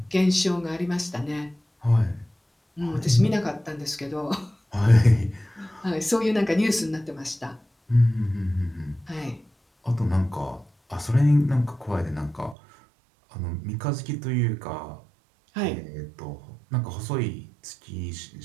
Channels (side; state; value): left; drops out; at 12.6 s